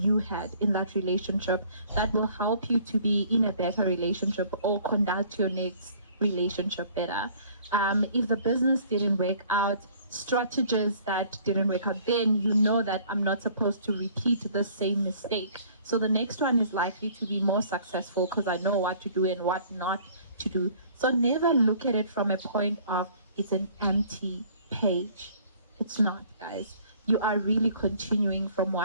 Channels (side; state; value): both; inverted; correlation -0.55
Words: had in that relationship that will help you to be in a better relationship or conduct your next relationship better. If the business didn't work out, strategies that didn't work out, then you know that I'm not supposed to repeat the same mistake. So the next one is likely to be more successful because I know what to do and what not to do. So never look at it from a point of it's an empty page. It's not, guys. You are really continuing from